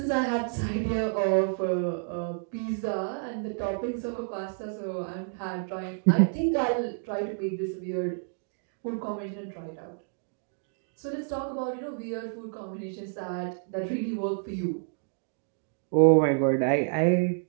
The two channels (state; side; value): silent; left; digital silence